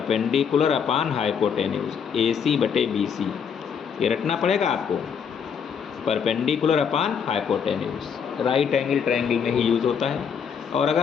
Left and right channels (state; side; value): quieter; right; 7.1 dB